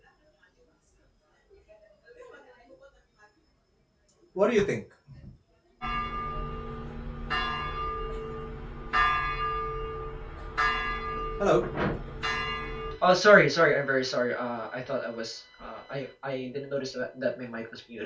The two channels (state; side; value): identical; both; correlation 1.00